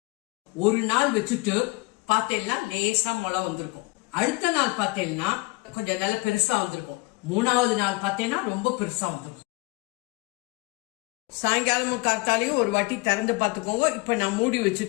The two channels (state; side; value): quieter; right; 25.0 dB